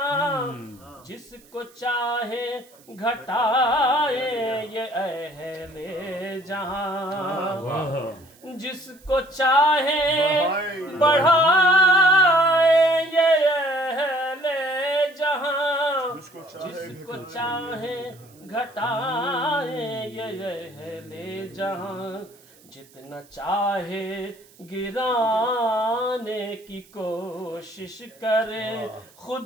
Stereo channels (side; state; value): right; noise; hiss, 27 dB below the sound